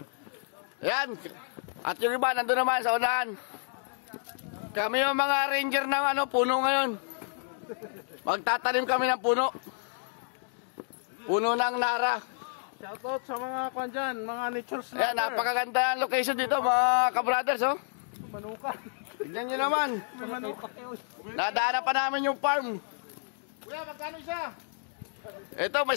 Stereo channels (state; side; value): silent; right; digital silence